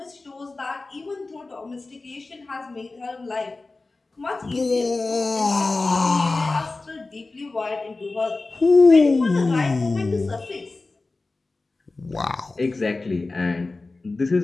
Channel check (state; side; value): quieter; right; 3.4 dB